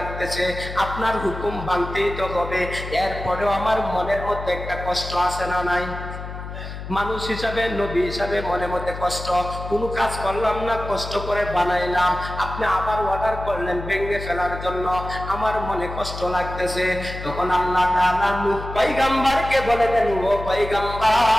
আপনার হুকুম মানতেই তো হবে। এরপরেও আমার মনের মধ্যে একটা কষ্ট আছে না নাই? মানুষ হিসাবে, নবী হিসাবে মনের মধ্যে কষ্ট। কোনো কাজ করলাম না, কষ্ট করে বানাইলাম, আপনি আবার অর্ডার করলেন ভেঙে ফেলার জন্য, আমার মনে কষ্ট লাগতেছে। তখন আল্লাহ তাআলা নূহ পয়গম্বরকে বলে দেন, ও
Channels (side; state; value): left; noise; hum, 9 dB below the sound